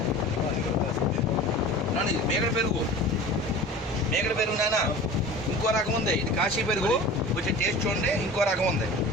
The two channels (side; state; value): both; normal; correlation 0.38